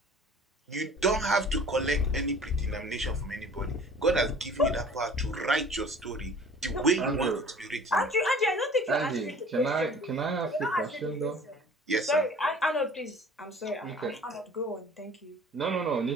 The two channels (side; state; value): both; normal; correlation 0.48